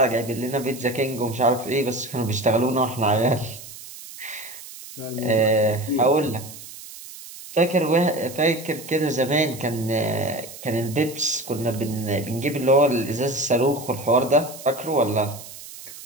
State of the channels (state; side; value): noise; right; hiss, 15 dB below the sound